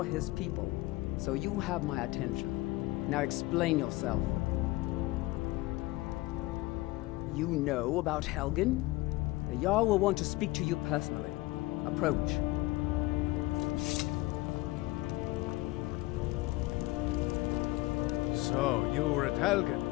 his people. So you have my attention. Now explain yourself. You know about Helgen? The Jarl will want to speak to you personally. Approach. So, you were at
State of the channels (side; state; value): right; quieter; 20.0 dB